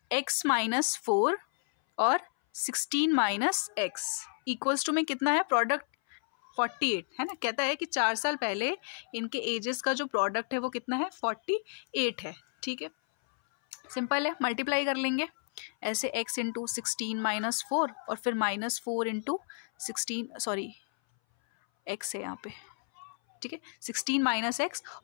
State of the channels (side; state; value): right; silent; 57 dB below the other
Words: x - 4 और 16 - x इक्वल्स टू में कितना है प्रोडक्ट 48 है ना। कहता है कि 4 साल पहले इनके एजेस का जो प्रोडक्ट है वो कितना है 48 है, ठीक है। सिंपल है, मल्टीप्लाई कर लेंगे ऐसे, x × 16 - 4 और फिर -4 × 16, सॉरी x है यहाँ पे, ठीक है, 16 - x